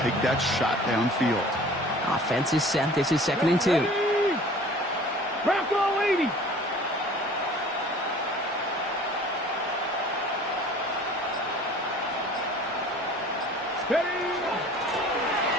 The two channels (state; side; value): normal; both; correlation 0.47